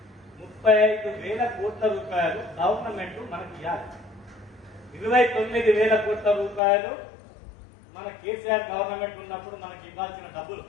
35,000 కోట్ల రూపాయలు గవర్నమెంట్ మనకి ఇవ్వాలి. 29,000 కోట్ల రూపాయలు మన కేసీఆర్ గవర్నమెంట్ ఉన్నప్పుడు మనకి ఇవ్వాల్సిన డబ్బులు.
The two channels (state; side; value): drops out; right; at 6.6 s